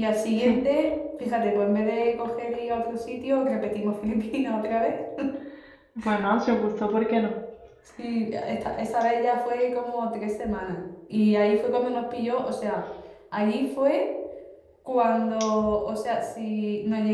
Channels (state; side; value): identical; both; correlation 1.00